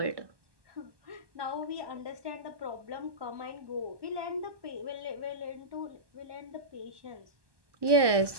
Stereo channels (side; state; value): left; late; 1.2 ms